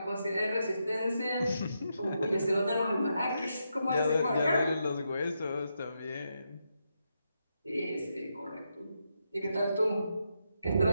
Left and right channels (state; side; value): inverted; both; correlation -0.83